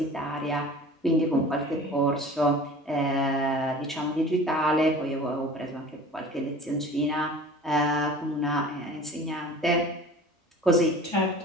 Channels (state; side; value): normal; both; correlation 0.41